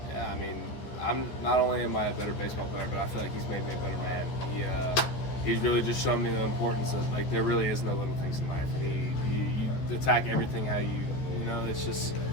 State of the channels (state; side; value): late; right; 14 ms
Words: Yeah, I'm not only am I a better baseball player, but I feel like he's made me a better man. He's really just shown me the importance of there really is no little things in life, and you attack everything how it's just